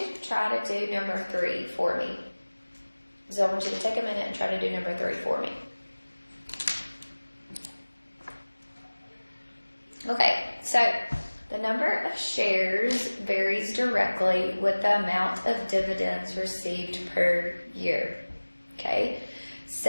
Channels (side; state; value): both; inverted; correlation -1.00